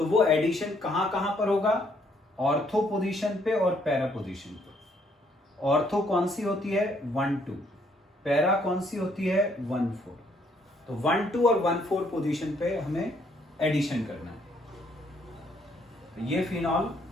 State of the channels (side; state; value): both; normal; correlation 0.68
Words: वो एडिशन कहां कहां पर होगा? ऑर्थो पोजीशन पे और पैरा पोजीशन पे। ऑर्थो कौन सी होती है? 1 2। पैरा कौन सी होती है? 1 4। तो 1 2 और 1 4 पोजीशन पे हमें एडिशन करना है। तो ये फिनॉल,